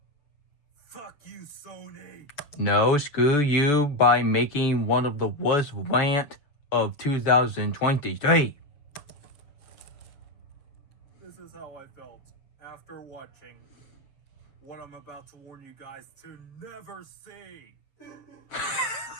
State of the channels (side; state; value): right; late; 6.9 ms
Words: Fuck you, Sony. No, screw you by making one of the worst rant of 2023. This is how I felt after watching what I'm about to warn you guys to never see.